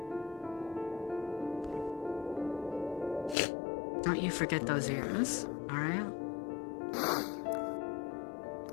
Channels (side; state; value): right; drops out; at 3.4 s